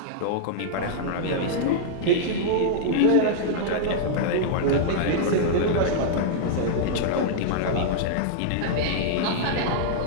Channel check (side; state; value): both; different; correlation -0.02